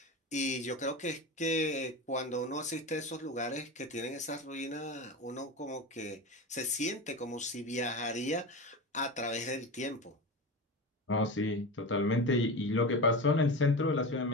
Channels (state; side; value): normal; both; correlation 0.25